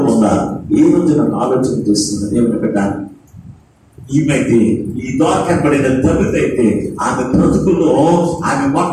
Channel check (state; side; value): identical; both; correlation 1.00